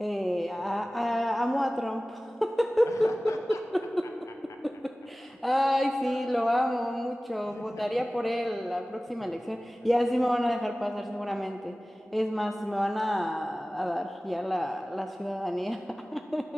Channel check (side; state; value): both; normal; correlation 0.97